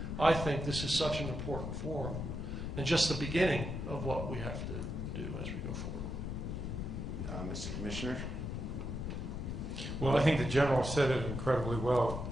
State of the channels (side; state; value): left; noise; rumble, 4 dB below the sound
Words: I think this is such an important forum. And just the beginning of what we have to do as we go forward. Mr. Commissioner? Well, I think the General said it incredibly well.